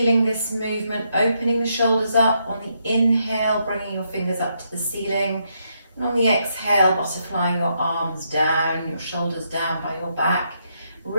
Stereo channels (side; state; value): both; inverted; correlation -0.78